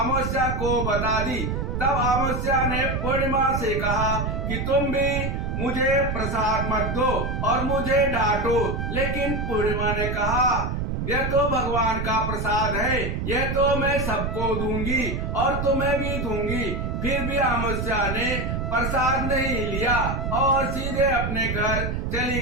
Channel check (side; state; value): right; noise; rumble, 2 dB below the sound